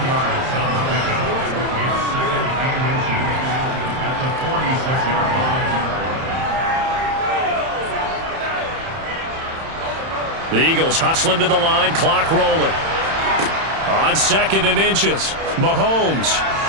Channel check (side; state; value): left; late; 31 ms